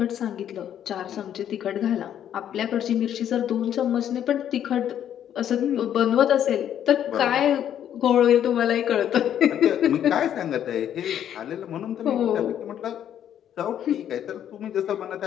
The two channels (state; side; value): quieter; right; 10.1 dB